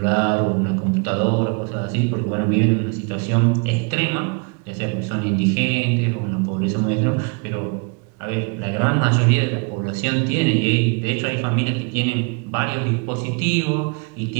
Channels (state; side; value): quieter; left; 33.5 dB